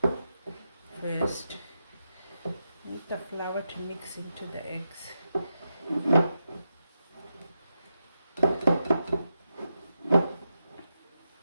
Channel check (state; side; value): inverted; both; correlation -0.87